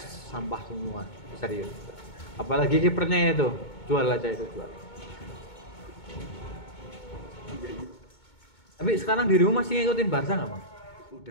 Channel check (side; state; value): right; late; 2.2 ms